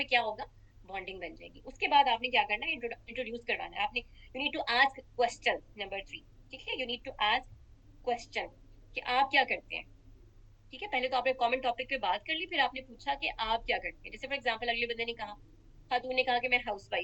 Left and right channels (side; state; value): both; identical; correlation 1.00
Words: क्या होगा? बॉन्डिंग बन जाएगी। उसके बाद आपने क्या करना है? इंट्रोड्यूस करवाना है आपने। You need to ask question. Number 3, ठीक है, you need to ask question कि आप क्या करते हैं। ठीक है, पहले तो आपने कॉमन टॉपिक पे बात कर ली, फिर आपने पूछा कि आप क्या करते हैं। जैसे फॉर एग्जांपल अगले बंदे ने कहा, खातून ने कहा कि मैं हाउस